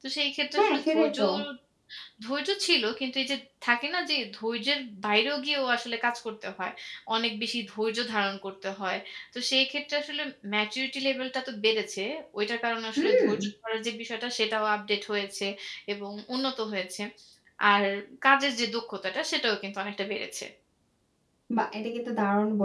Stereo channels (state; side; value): identical; both; correlation 1.00